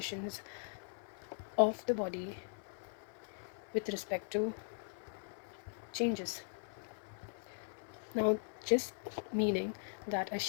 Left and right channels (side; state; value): right; silent; 51 dB below the other